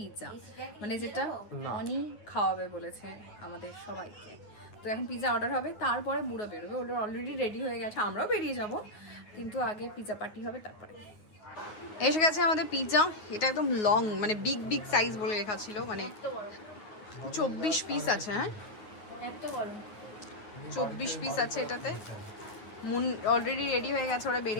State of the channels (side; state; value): right; late; 9.5 ms